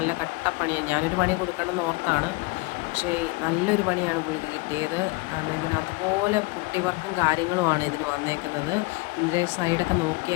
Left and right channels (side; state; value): right; quieter; 24.6 dB